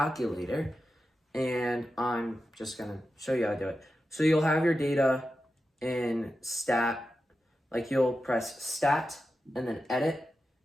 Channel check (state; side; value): normal; both; correlation 0.91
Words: and I'm just gonna show you how to do it. So you'll have your data in stat, like you'll press stat and then edit,